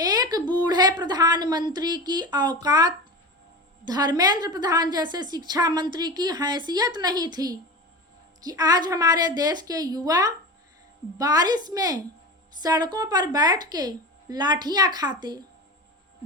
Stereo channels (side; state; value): both; normal; correlation 0.27